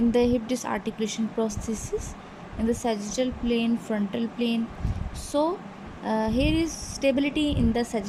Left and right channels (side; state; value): both; identical; correlation 1.00